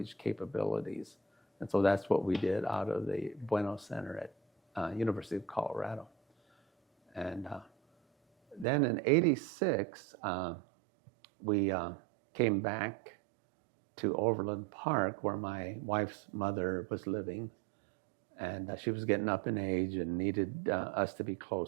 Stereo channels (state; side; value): drops out; left; at 8.7 s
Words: capabilities. And so that's what we did out of the Bueno Center at University of Colorado. And then in '86, we came back to Overland Park, where my wife's mother was living. And she was getting up in age and needed us to be